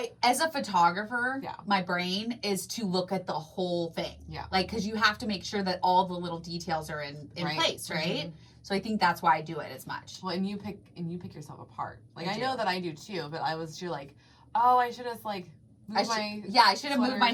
As a photographer, my brain is to look at the whole thing. Yeah. Like, because you have to make sure that all the little details are in place, right? Mm-hmm. So I think that's why I do it as much. Well, and you pick yourself apart. Like, I know that I do too, but you're like, oh, I should have, like... I should have moved my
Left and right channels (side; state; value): both; identical; correlation 1.00